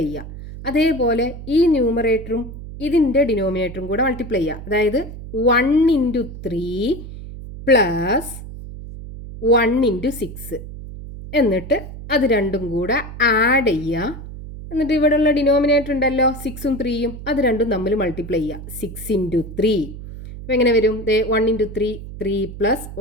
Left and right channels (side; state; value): right; noise; hum, 12 dB below the sound